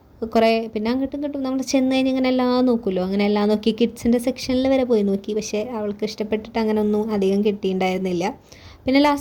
കുറേ, പിന്നെ അങ്ങോട്ടും ഇങ്ങോട്ടും നമ്മൾ ചെന്ന് കഴിഞ്ഞ് ഇങ്ങനെ എല്ലാം നോക്കുമല്ലോ, അങ്ങനെ എല്ലാം നോക്കി കിഡ്സിൻ്റെ സെക്ഷനിൽ വരെ പോയി നോക്കി. പക്ഷേ അവൾക്ക് ഇഷ്ടപ്പെട്ടിട്ട് അങ്ങനെ ഒന്നും അധികം കിട്ടിയിട്ടുണ്ടായിരുന്നില്ല. പിന്നെ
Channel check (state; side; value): identical; both; correlation 1.00